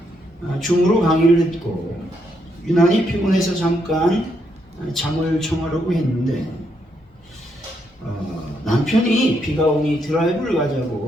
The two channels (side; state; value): both; normal; correlation 0.77